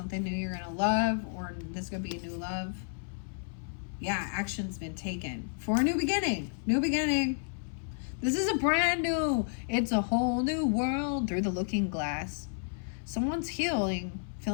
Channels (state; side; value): silent; right; 57 dB below the other